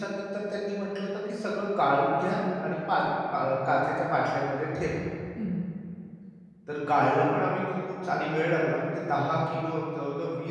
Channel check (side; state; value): both; identical; correlation 1.00